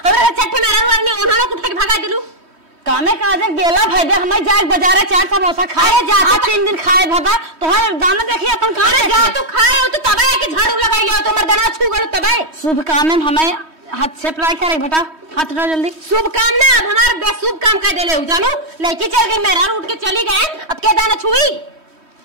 हमरा चट्टे में रहू नहीं उन्होंने उठा के भगा दिलू कामे काजे गेला फायदे हमें जाए बाजारे 4 समोसा खाए जा 3 दिन खाए भगा तोहर दाना देखिए अपन अरे जा तू खाए हो तो तबे के झाड़ू लगाइयो तो मर्दना छू गल तबे। शुभ काम में हमें हाथ से अप्लाई करे बेटा हाथ उठा जल्दी। शुभ काम ना अब हमारा बेशुभ काम कर देले हो जानो लड़की चल गई मेरा उठ के चली गए अब के दाना छुई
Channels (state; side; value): late; left; 3.1 ms